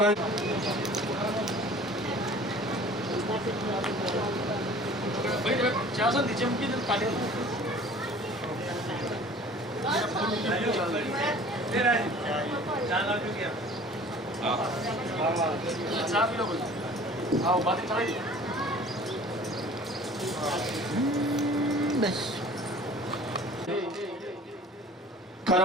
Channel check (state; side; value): normal; both; correlation 0.47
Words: નીચે મૂકી દો।